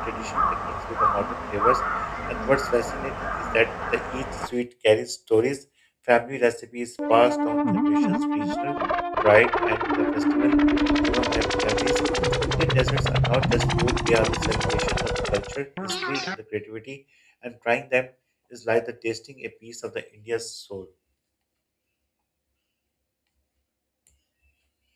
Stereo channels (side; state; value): both; identical; correlation 1.00